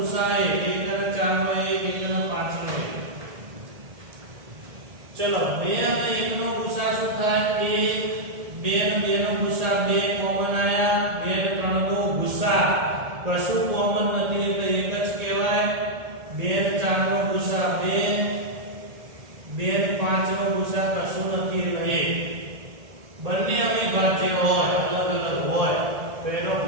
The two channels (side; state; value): left; late; 1.7 ms